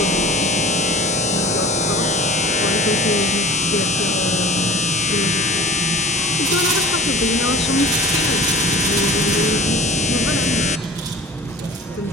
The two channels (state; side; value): normal; both; correlation 0.38